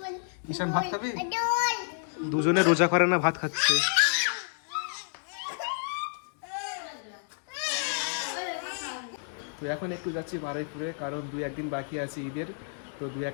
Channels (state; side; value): silent; right; digital silence